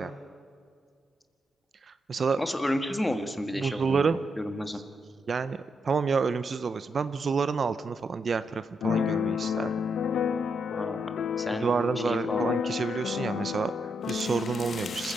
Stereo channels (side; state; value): both; normal; correlation 0.80